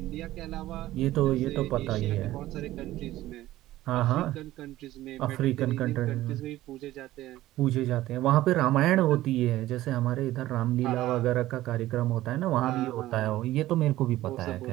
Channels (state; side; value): quieter; left; 15.5 dB